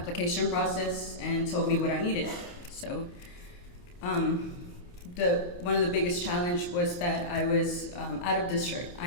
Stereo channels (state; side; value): late; right; 29 ms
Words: process and told me what I needed. So one of the biggest challenge was that I was out of district.